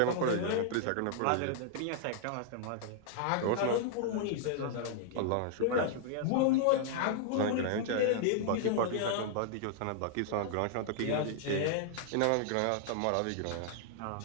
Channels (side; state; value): both; different; correlation -0.01